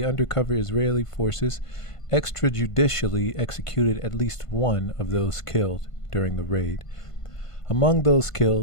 undercover Israeli forces extrajudicially executed at least one of those killed during the raid. Among those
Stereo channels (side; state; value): right; late; 1.5 ms